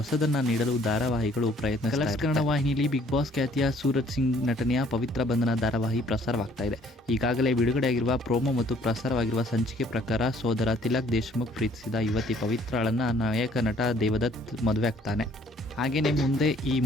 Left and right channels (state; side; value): normal; both; correlation 0.60